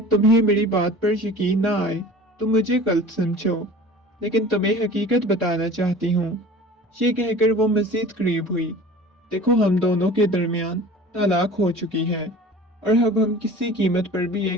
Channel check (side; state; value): both; normal; correlation 0.41